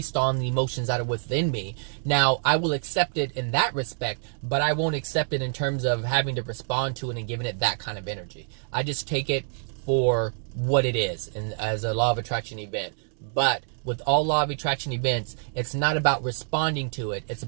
on the emotions that are within me. Now, I will accept it in that respect, but I won't accept it in terms of having to respond to it and giving it that kind of energy. I just take it for what it is, and as a law of attraction event. But with all law of attraction events, it's not about responding to it. It's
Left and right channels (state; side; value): silent; left; 61 dB below the other